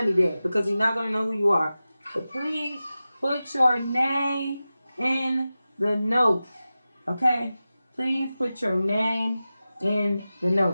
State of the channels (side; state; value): both; inverted; correlation -0.95